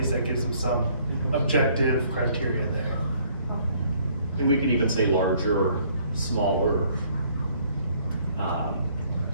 that gives them some objective criteria there. And we could even say larger, smaller.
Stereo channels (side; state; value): both; inverted; correlation -0.63